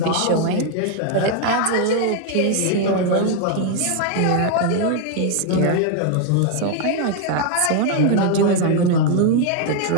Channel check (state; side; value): different; both; correlation 0.01